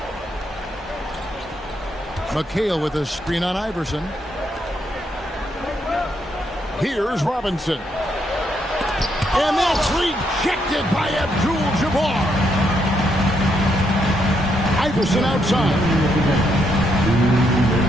McHale with a screen on Iverson. Here's Robinson. And that's rejected by Abdul-Jabbar. Iverson outside.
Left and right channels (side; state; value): both; normal; correlation 0.76